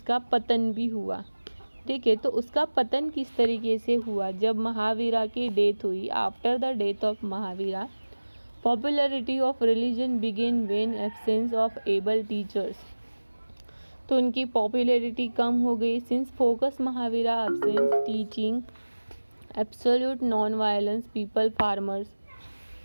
पतन भी हुआ। ठीक है, तो उसका पतन किस तरीके से हुआ, जब महावीरा की डेथ हुई। After the death of Mahavira, popularity of religion begin when absence of able teachers. तो उनकी पॉपुलैरिटी कम हो गई since focus Mahavira absence teaching absolute non violence people farmers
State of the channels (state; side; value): inverted; both; correlation -1.00